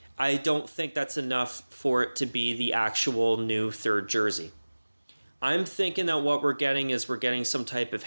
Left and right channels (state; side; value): inverted; both; correlation -1.00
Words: I don't think that's enough for it to be the actual new third jersey. I'm thinking that what we're getting is some type of